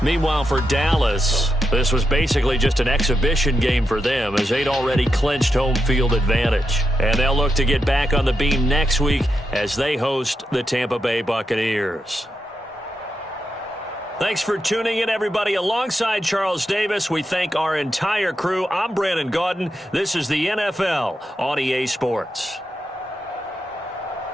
for Dallas, this was basically just an exhibition game for them as they'd already clinched home field advantage. And they'll look to get back on the beam next week as they host the Tampa Bay Buccaneers. Thanks for tuning in, everybody. Alongside Charles Davis, we thank our entire crew. I'm Brandon Gaudin. This is the NFL on EA Sports.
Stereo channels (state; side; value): normal; both; correlation 0.85